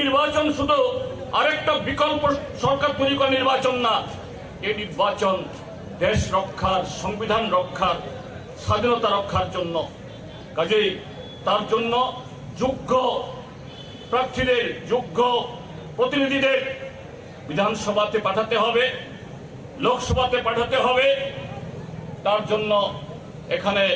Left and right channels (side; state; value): both; identical; correlation 1.00